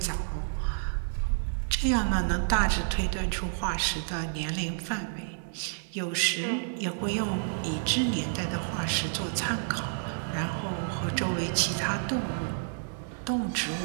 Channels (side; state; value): left; silent; digital silence